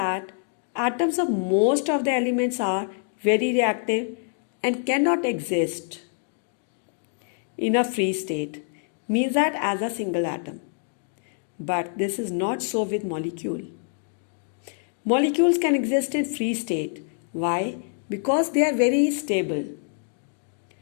atoms of most of the elements are very reactive and cannot exist in a free state, means that as a single atom. But this is not so with molecule. Molecules can exist in free state. Why? Because they are very stable.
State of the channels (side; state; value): right; silent; 61 dB below the other